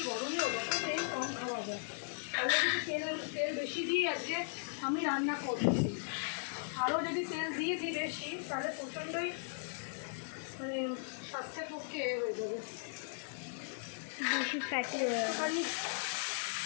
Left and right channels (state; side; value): silent; right; digital silence